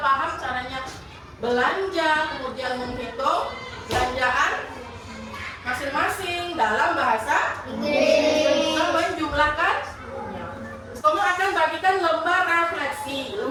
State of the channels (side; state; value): both; identical; correlation 1.00